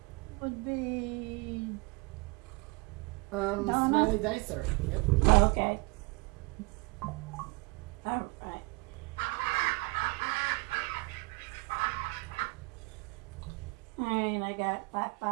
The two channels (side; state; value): left; quieter; 26.9 dB